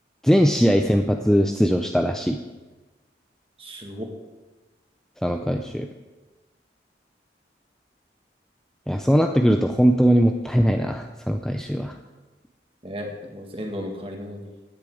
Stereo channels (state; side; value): normal; both; correlation 0.94